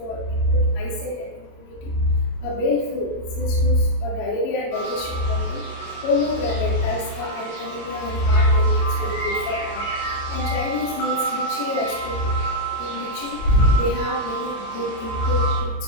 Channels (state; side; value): late; right; 18 ms